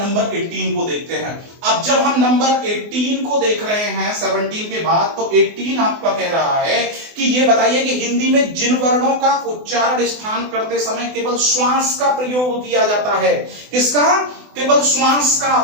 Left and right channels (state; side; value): late; left; 24 ms